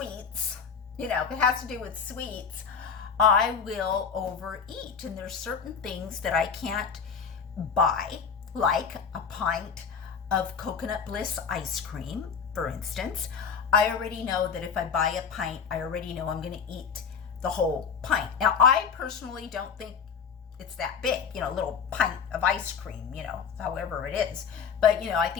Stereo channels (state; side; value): quieter; right; 6.4 dB